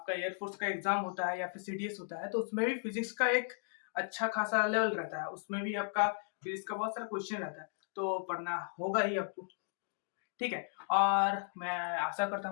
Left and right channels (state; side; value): silent; right; digital silence